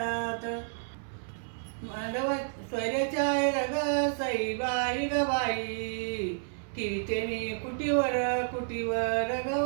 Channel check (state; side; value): silent; left; 57 dB below the other